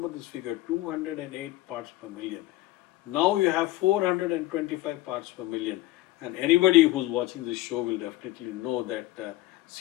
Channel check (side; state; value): right; quieter; 16.8 dB